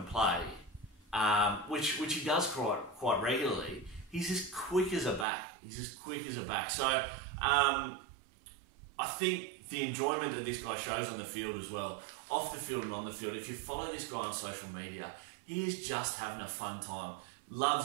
play, which he does quite regularly, he's as quick as a back. So I think the enjoyment that this guy shows on the field as well, off the field and on the field, if you follow this guy on social media, he is just having a fun time.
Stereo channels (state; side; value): drops out; left; at 5.2 s